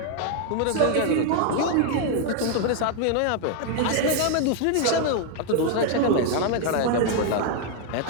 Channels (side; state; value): both; different; correlation 0.00